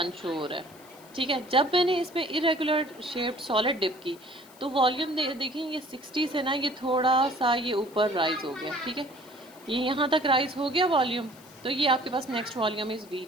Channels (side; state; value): left; noise; hiss, 24 dB below the sound